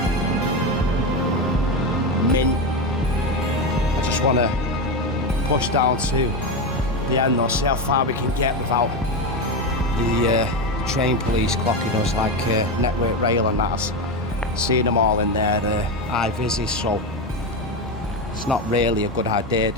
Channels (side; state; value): both; normal; correlation 0.15